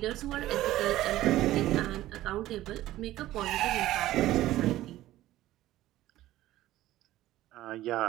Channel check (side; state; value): left; quieter; 15.1 dB